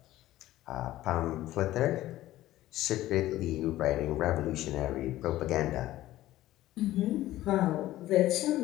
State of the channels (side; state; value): right; quieter; 15.2 dB